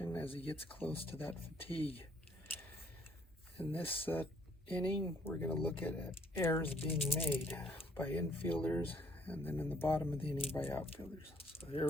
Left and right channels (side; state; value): both; normal; correlation 0.64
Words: as he gets close to that fatigue. In this inning, we're going to look at errors being made by infielders, and then in the bottom of the inning by outfielders. So here